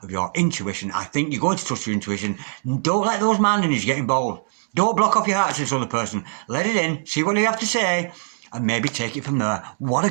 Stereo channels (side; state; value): left; silent; digital silence